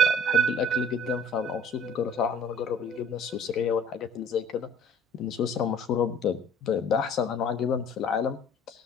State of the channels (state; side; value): normal; both; correlation 0.52